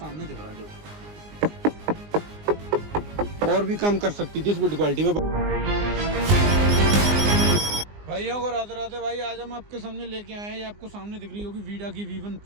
दिख रहा है। और भी कम कर सकती थी इस बिल्ड क्वालिटी में। भाइयों को राधे राधे। भाई आज हम आपके सामने लेके आए हैं, ये आपको सामने दिख रही होगी वीडा की V1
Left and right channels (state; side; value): late; left; 19 ms